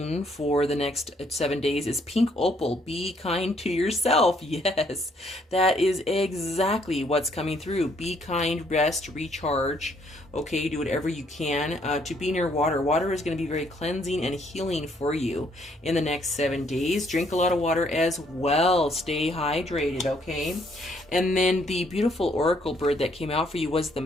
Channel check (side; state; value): both; normal; correlation 0.68